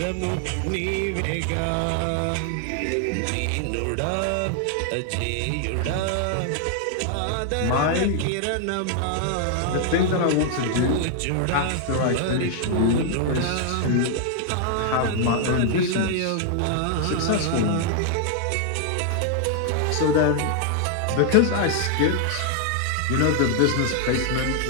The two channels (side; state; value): both; different; correlation 0.00